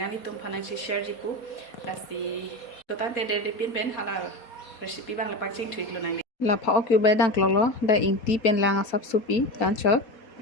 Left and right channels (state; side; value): late; right; 4.2 ms